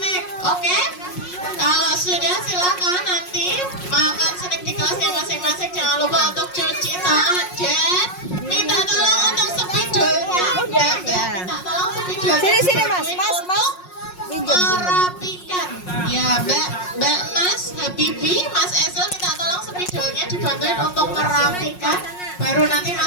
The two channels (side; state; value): right; late; 5.5 ms